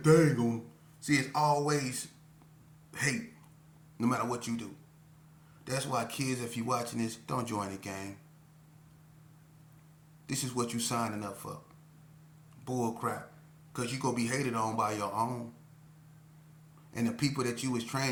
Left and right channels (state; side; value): identical; both; correlation 1.00